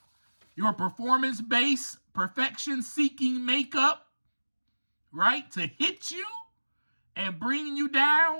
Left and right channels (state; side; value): inverted; both; correlation -1.00